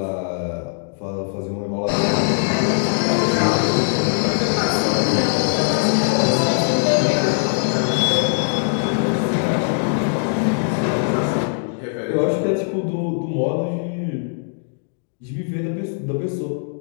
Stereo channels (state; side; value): silent; right; digital silence